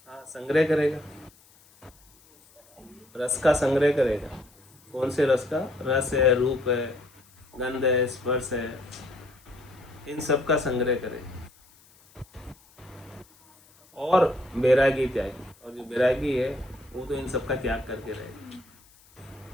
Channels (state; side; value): noise; left; hiss, 28 dB below the sound